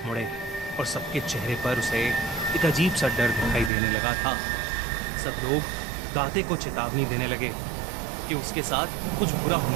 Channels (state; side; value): drops out; left; at 3.7 s